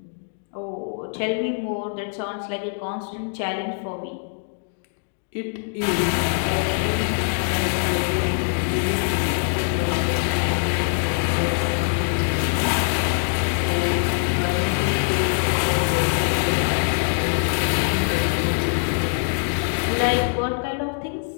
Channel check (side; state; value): right; silent; digital silence